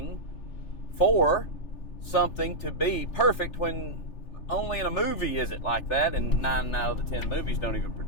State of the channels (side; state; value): right; late; 3.4 ms